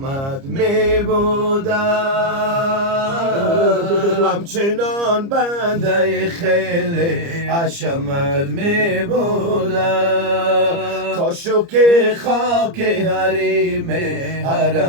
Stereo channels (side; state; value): left; late; 30 ms